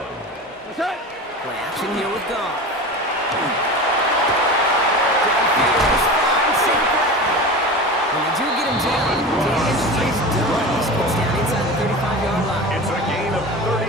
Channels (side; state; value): both; normal; correlation 0.30